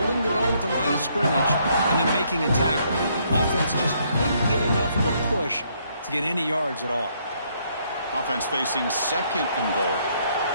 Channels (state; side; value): inverted; both; correlation -0.70